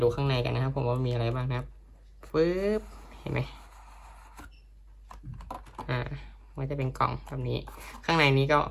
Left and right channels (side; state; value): both; identical; correlation 1.00